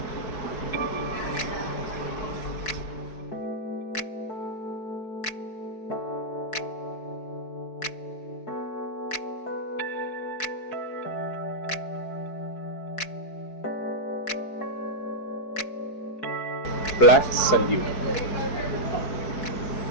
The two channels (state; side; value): late; right; 4.6 ms